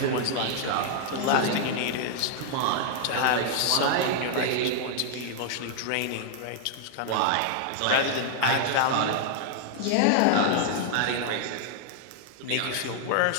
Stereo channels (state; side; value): different; both; correlation -0.01